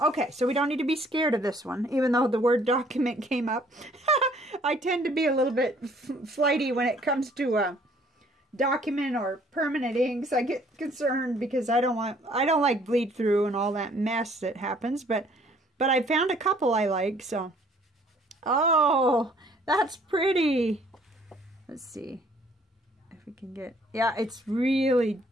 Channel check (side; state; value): both; normal; correlation 0.60